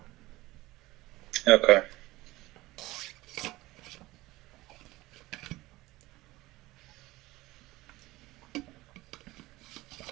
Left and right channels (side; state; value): left; quieter; 18.9 dB